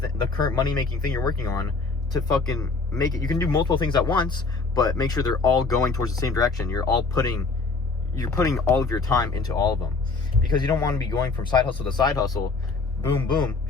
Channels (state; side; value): quieter; right; 4.0 dB